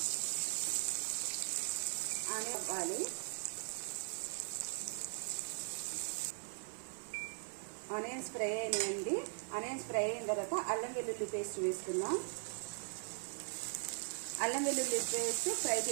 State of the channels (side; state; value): left; silent; 51 dB below the other